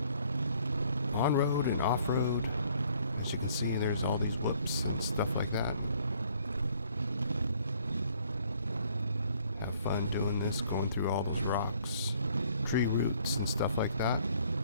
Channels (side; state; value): both; inverted; correlation -0.62